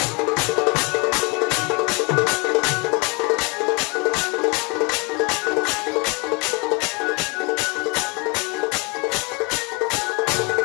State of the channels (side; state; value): right; quieter; 30.4 dB